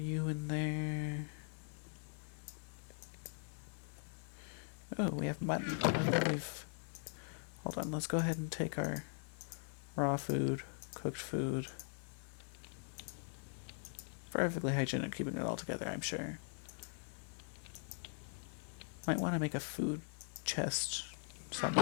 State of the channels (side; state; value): right; silent; digital silence